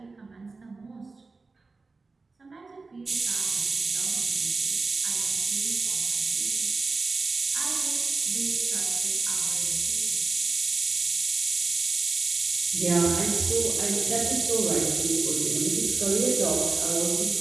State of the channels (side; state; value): left; quieter; 3.9 dB